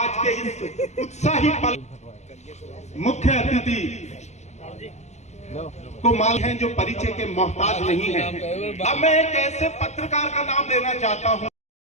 के इस उत्साही पल। मुख्य अतिथि को माल हैं जो परिचय के मोहताज नहीं है। अब मैं एक ऐसे पत्रकार का नाम लेना चाहता हूं,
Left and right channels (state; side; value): late; right; 0.33 ms